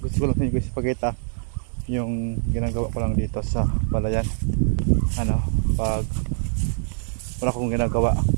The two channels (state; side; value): silent; left; digital silence